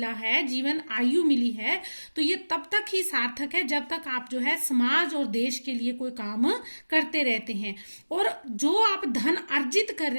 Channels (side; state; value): both; inverted; correlation -1.00